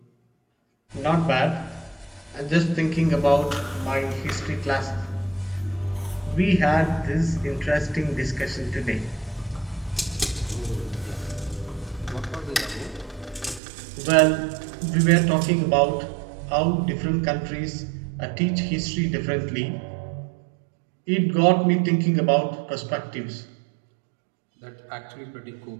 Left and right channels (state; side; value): drops out; left; at 13.6 s